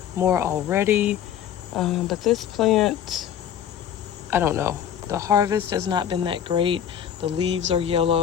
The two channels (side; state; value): right; quieter; 9.5 dB